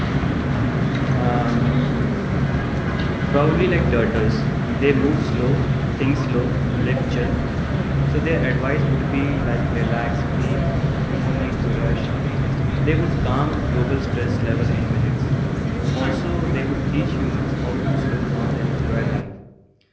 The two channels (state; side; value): identical; both; correlation 1.00